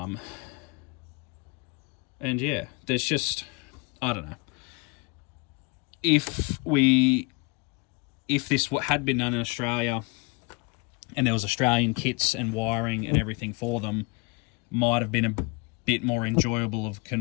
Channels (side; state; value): right; quieter; 28.7 dB